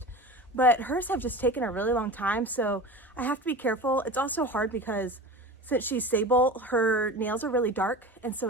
but hers have just taken a really long time. So I have to be careful. It's also hard because since she's sable, her nails are really dark. And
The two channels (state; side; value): normal; both; correlation 0.32